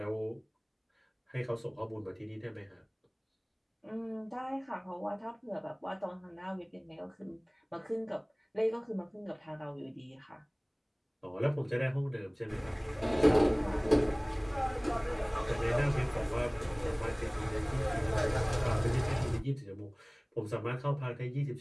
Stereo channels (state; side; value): identical; both; correlation 1.00